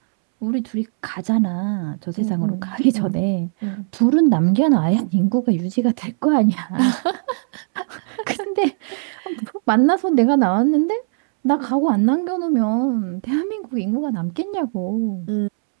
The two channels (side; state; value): left; silent; 66 dB below the other